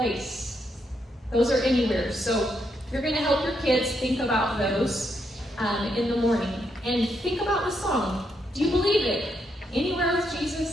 Those are anywhere. So you're going to help your kids think about those in the morning. And think about the song. Do you believe it? Anywhere with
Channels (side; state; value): both; normal; correlation 0.79